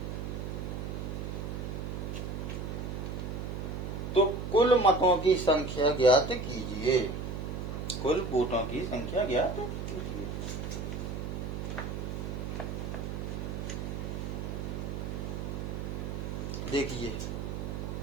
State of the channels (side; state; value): right; noise; hum, 4 dB below the sound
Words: तो कुल मतों की संख्या ज्ञात कीजिए। कुल वोटों की संख्या ज्ञात कीजिए। देखिए